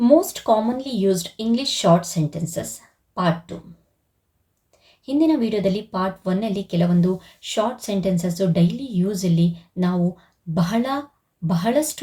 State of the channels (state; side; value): identical; both; correlation 1.00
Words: commonly used English short sentences part 2. ಹಿಂದಿನ ವಿಡಿಯೋದಲ್ಲಿ ಪಾರ್ಟ್ 1ಅಲ್ಲಿ ಕೆಲವೊಂದು short sentences daily ಯೂಸಲ್ಲಿ ನಾವು